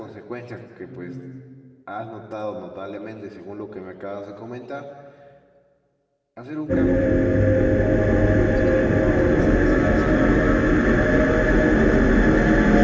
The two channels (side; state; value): both; identical; correlation 1.00